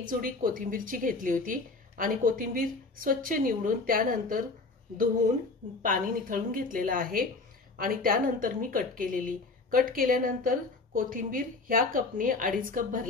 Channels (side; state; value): right; quieter; 3.7 dB